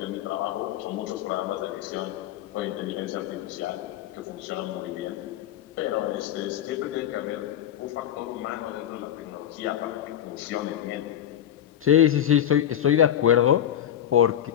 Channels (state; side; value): quieter; right; 10.5 dB